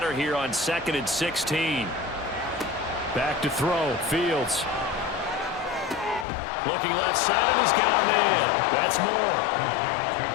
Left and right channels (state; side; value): drops out; right; at 6.2 s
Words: here on 2nd and 16. Back to throw, Fields. Looking left side, and he's got a man. That's more.